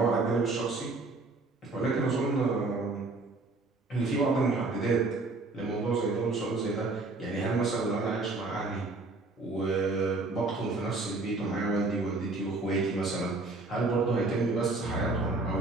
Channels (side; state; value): left; quieter; 3.4 dB